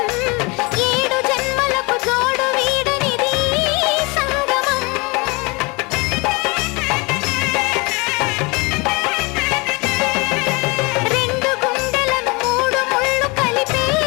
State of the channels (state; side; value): quieter; right; 27.2 dB